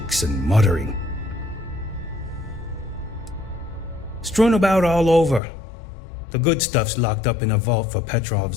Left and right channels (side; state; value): right; drops out; at 5.4 s